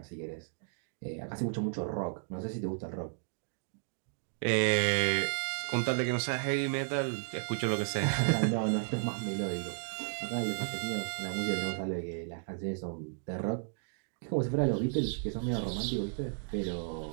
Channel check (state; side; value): silent; left; digital silence